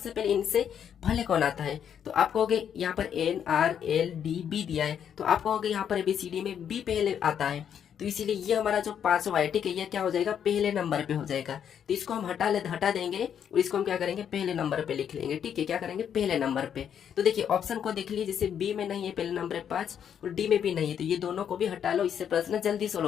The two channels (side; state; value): right; quieter; 8.6 dB